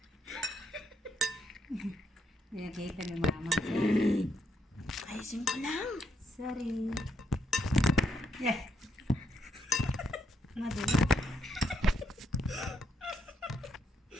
Nakita ni mama. Ayusin ko lang. Sorry. Yeah. Madula.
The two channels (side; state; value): both; normal; correlation 0.77